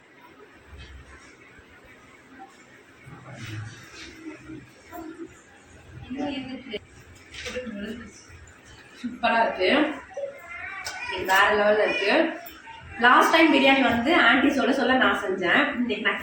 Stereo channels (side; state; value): both; identical; correlation 1.00